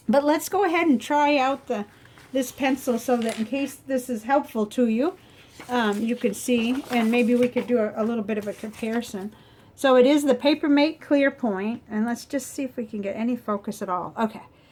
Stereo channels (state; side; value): identical; both; correlation 1.00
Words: but let's go ahead and try out this pencil so that in case this is helpful to you, you can see, and maybe we could do a little bit of a comparison. So it is the Papermate Clearpoint, and let's just see if we can get any focus at all. Okay,